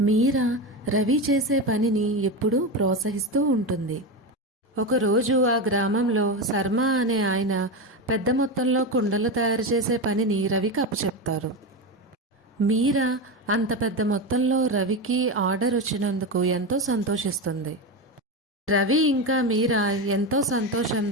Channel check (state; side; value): normal; both; correlation 0.17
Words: మీరా రవి చేసే పనిని ఎప్పుడూ ప్రోత్సహిస్తూ ఉంటుంది. ఒకరోజు ఆ గ్రామంలో శర్మ అనే ఆయన పెద్ద మొత్తంలో కుండలు తయారు చేసే పనిని రవికి అప్పచెప్తారు. మీరా అంత పెద్ద మొత్తంలో రవికి ఆర్డర్ వచ్చినందుకు ఎంతో సంతోషిస్తుంది. రవి ఇంకా మీరా ఎంతో